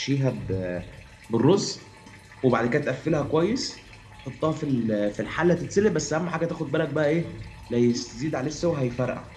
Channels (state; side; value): identical; both; correlation 1.00